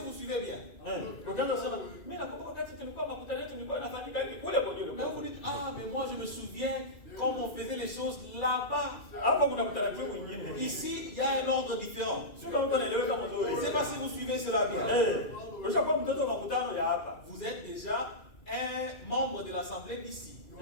suivez bien. Ukaanza kusema mimi nakumbuka wakati tulikuwa makutano yetu nilikuwa nafanyika hivi kule kwa Mais vous dites, ah, mais moi je me souviens quand on faisait les choses là-bas. hapa kuna utaratibu mwingine. Ici, il y a un ordre différent. Sio kama mtu anaeleweka Je mzuri. ne sais pas si vous suivez cela bien. Ushakuwa mtoto wa makutano ya hapa. Vous êtes déjà un membre de l'assemblée d'ici.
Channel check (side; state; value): right; late; 2.0 ms